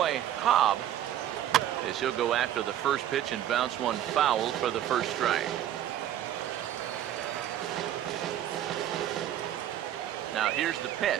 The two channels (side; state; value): left; quieter; 11.5 dB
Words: Cobb, as he'll go after the first pitch and bounce one foul for the first strike. Now here's the